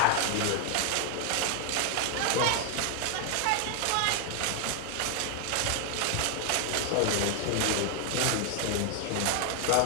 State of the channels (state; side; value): different; both; correlation 0.00